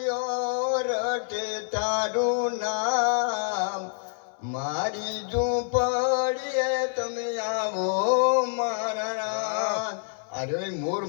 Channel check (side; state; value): right; silent; 60 dB below the other